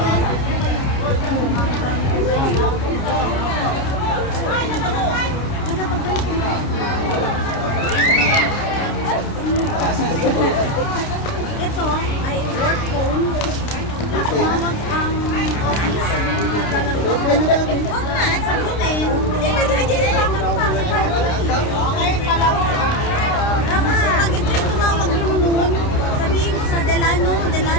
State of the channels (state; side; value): late; right; 29 ms